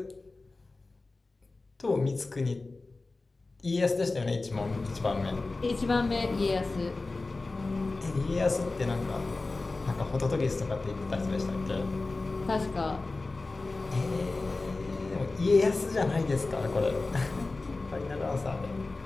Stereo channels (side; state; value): right; quieter; 3.4 dB